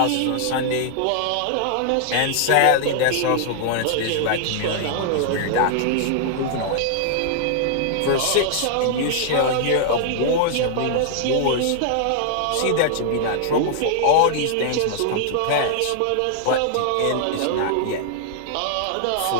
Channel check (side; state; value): both; different; correlation -0.01